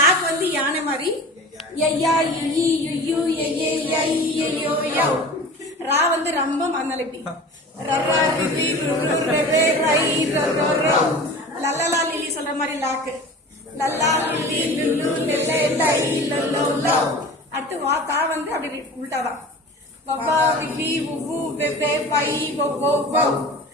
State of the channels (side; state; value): both; normal; correlation 0.37